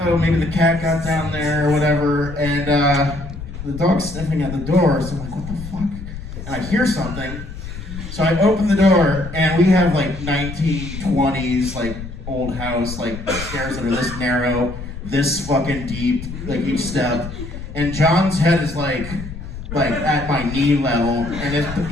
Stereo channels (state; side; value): noise; left; rumble, 10 dB below the sound